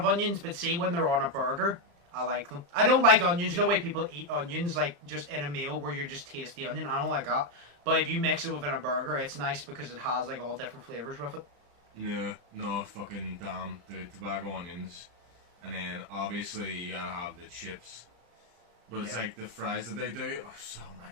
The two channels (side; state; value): left; late; 35 ms